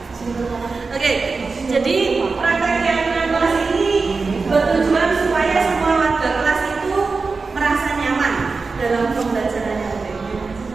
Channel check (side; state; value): left; quieter; 4.3 dB